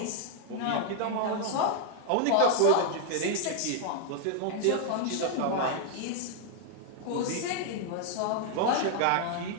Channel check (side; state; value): both; different; correlation 0.00